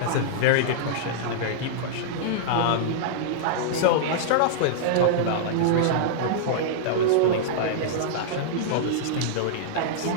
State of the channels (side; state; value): both; different; correlation -0.02